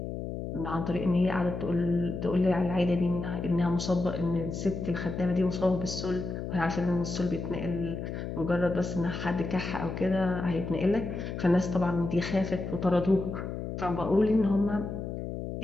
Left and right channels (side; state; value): left; noise; hum, 6 dB below the sound